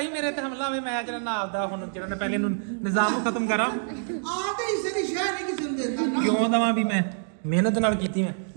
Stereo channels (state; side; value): silent; left; digital silence